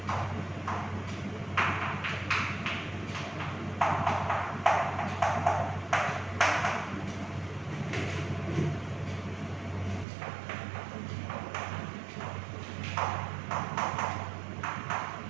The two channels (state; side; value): drops out; left; at 10.1 s